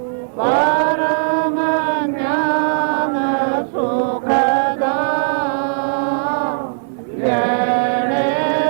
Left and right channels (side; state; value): left; silent; 61 dB below the other